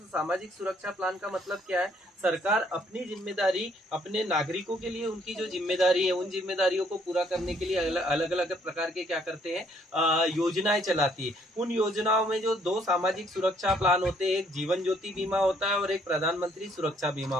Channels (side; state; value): both; normal; correlation 0.66